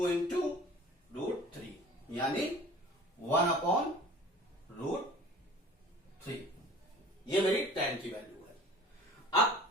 इंटू रूट 3, यानी 1 अपॉन रूट 3। ये मेरी tan की वैल्यू है।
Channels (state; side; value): normal; both; correlation 0.44